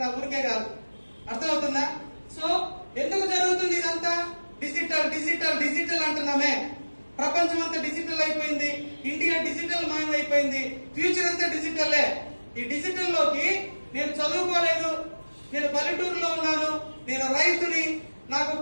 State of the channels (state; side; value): inverted; both; correlation -1.00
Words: ఊరికే కాదు. అర్థమవుతుందా? సో ఎందుకు జరుగుతుంది ఇదంతా? డిజిటల్ డిజిటల్ డిజిటల్ అంటున్నామే. ప్రపంచం అంతా డిజిటల్ అయిపోయింది, ఇండియా డిజిటల్ మయం అయిపోయింది, ఫ్యూచర్ అంతా డిజిటల్లే. ఈ డిజిటల్ లోకి నేను చదువుకోలేదు, నేను పల్లెటూరులో ఉన్నాను, నేను రైతుని, నాకు